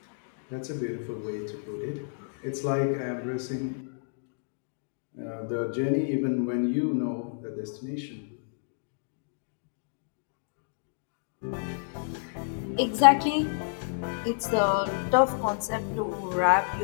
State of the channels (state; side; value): silent; right; digital silence